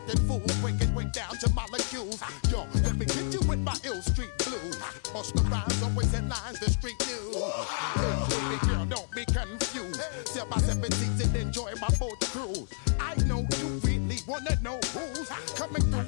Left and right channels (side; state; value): right; silent; digital silence